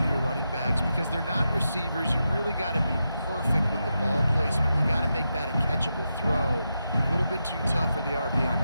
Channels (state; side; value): inverted; both; correlation -0.87